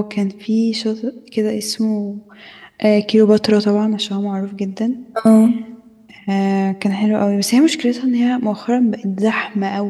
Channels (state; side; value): identical; both; correlation 1.00